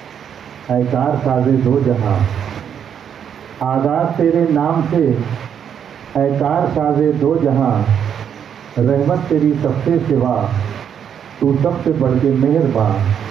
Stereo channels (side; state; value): left; quieter; 8.3 dB